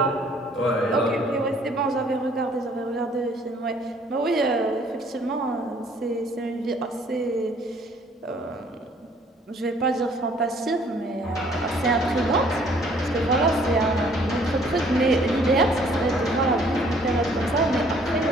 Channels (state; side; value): normal; both; correlation 0.59